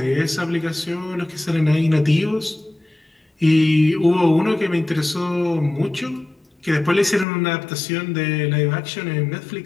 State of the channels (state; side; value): drops out; right; at 7.2 s